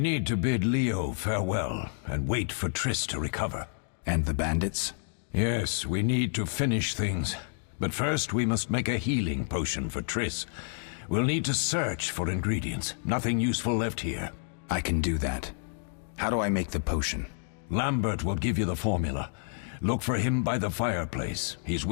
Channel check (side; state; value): right; silent; digital silence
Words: to bid Leo farewell and wait for Triss to recover. And the bandits? Yes, we need to finish things. But first we must make a healing potion for Triss. We'll need to search for ingredients. Nothing useful left here. I can do that. How do I make the potion? Lambert will give you the formula. Look for him by the fireplace. He's